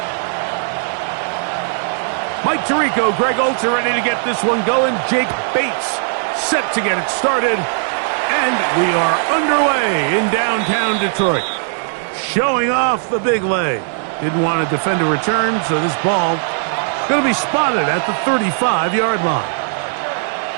Mike Tirico, Greg Oltz are ready to get this one going. Jake Bates set to get it started. And we are underway in downtown Detroit. Showing off the big leg. Didn't want to defend a return, so this ball going to be spotted at the 35-yard line.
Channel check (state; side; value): silent; left; 68 dB below the other